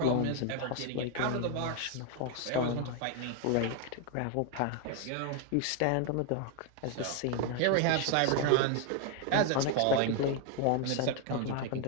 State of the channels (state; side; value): different; both; correlation 0.01